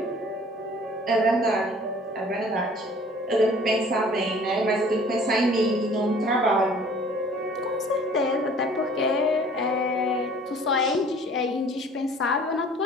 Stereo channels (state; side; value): normal; both; correlation 0.51